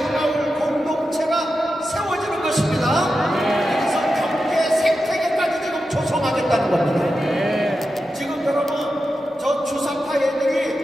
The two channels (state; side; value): normal; both; correlation 0.90